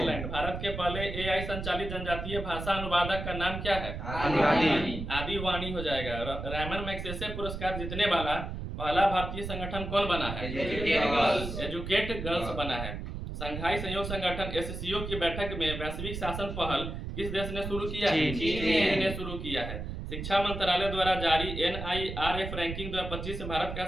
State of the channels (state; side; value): noise; right; rumble, 6 dB below the sound